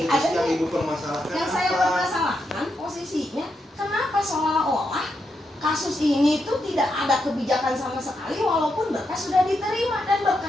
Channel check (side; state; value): both; normal; correlation 0.83